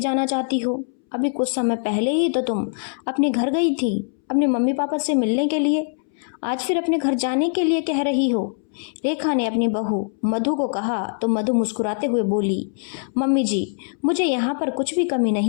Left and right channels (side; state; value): right; silent; 64 dB below the other